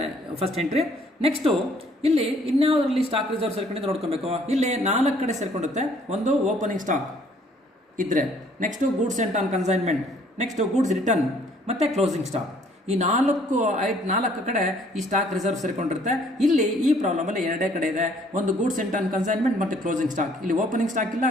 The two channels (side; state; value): both; normal; correlation 0.61